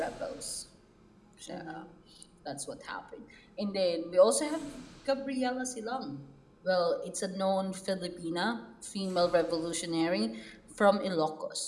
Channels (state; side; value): identical; both; correlation 1.00